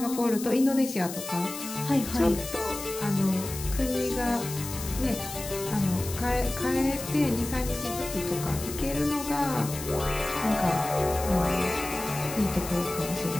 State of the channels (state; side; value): noise; left; hiss, 10 dB below the sound